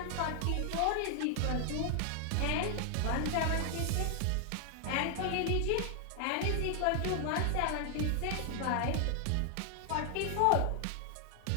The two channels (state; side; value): different; both; correlation 0.00